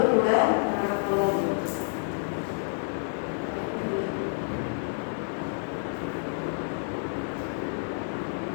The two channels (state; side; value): silent; right; 59 dB below the other